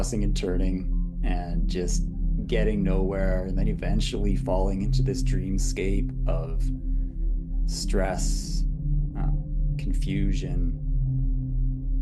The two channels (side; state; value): both; identical; correlation 1.00